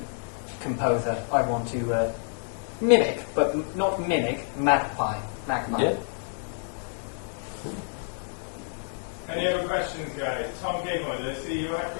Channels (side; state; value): right; silent; 59 dB below the other